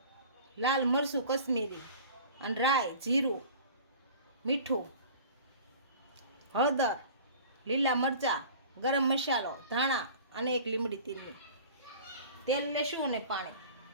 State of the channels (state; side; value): inverted; both; correlation -0.43